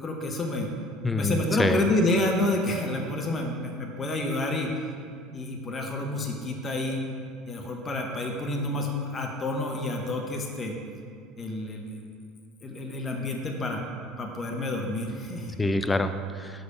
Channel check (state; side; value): normal; both; correlation 0.51